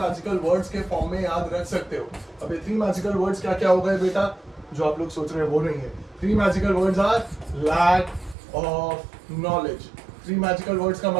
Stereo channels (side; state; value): left; drops out; at 8.3 s